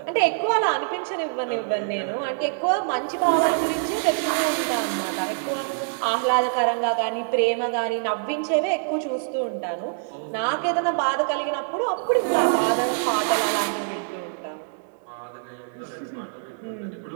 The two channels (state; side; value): silent; left; digital silence